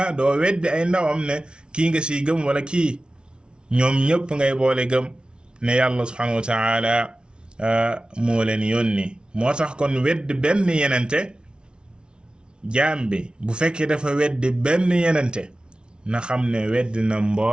doo weddi ay ndawam ne kii nga siy gëm wala kii ñoom ñëpp ngay boole gëm ne yàlla subhanahu wa ta'ala moo leen yónni moo tax kon weddi benn yenente jaam bi bu fekkee dafa weddi benn yenente na xam ne weddi na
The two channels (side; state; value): left; late; 0.056 ms